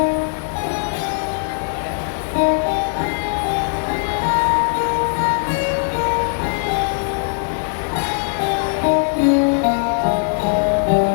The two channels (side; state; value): right; silent; 66 dB below the other